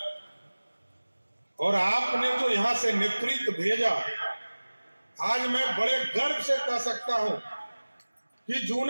और आपने जो यहां से नेतृत्व भेजा, आज मैं बड़े गर्व से कह सकता हूं कि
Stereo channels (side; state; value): both; inverted; correlation -1.00